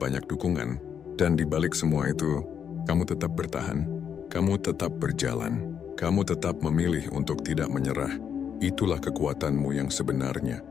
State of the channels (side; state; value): right; quieter; 7.9 dB